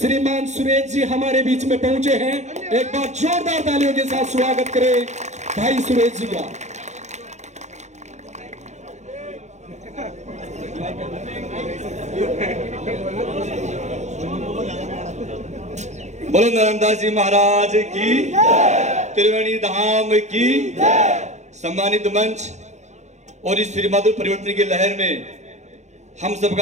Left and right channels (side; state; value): left; late; 0.33 ms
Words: सुरेश जी हमारे बीच में पहुंचे हैं। एक बार जोरदार तालियों के साथ स्वागत करें भाई सुरेश जी का। बोलो नरमदास जी महाराज की त्रिवेणी धाम की सम्मानित मंच और इस श्रीमधुर परिवर्तन की लहर में हम